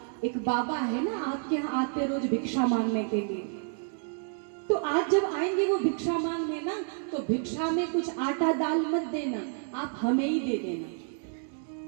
एक बाबा है ना आपके यहाँ आते रोज भिक्षा मांगने के लिए, तो आज जब आएंगे वो भिक्षा मांगने ना, तो भिक्षा में कुछ आटा दाल मत देना, आप हमें ही दे देना।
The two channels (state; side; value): silent; left; 58 dB below the other